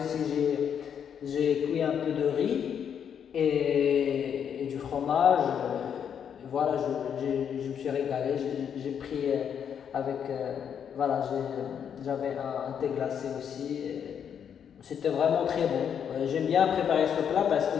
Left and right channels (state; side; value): quieter; right; 8.1 dB